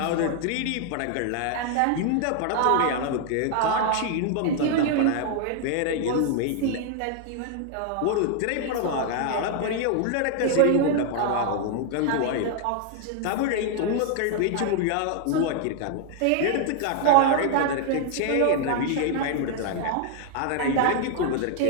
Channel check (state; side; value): different; both; correlation 0.00